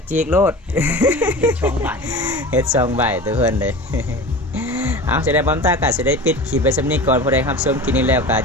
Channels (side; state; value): both; normal; correlation 0.33